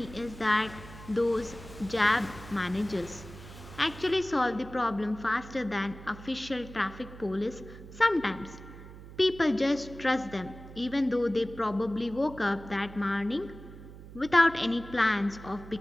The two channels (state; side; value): noise; right; hum, 16 dB below the sound